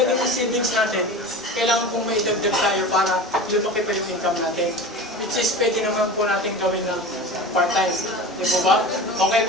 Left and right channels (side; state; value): both; normal; correlation 0.32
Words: yung savings natin, kailangan pong may idagdag tayo para lumaki pa yung income natin. Which is pwede naman po natin gawin ng part-time. Di po ba? Okay